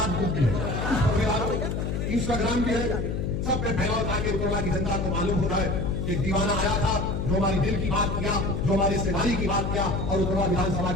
बुक भी है, इंस्टाग्राम भी है, सब पे फैलाओ ताकि उत्तरला की जनता को मालूम हो जाए कि दीवाना आया था जो हमारी दिल की बात किया, जो हमारी सेवारी की बात किया और उत्तरला विधानसभा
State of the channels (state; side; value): noise; left; hum, 2 dB below the sound